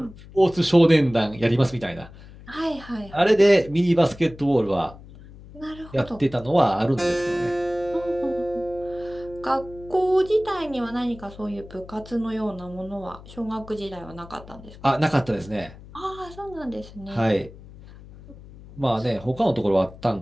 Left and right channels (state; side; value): noise; left; hum, 19 dB below the sound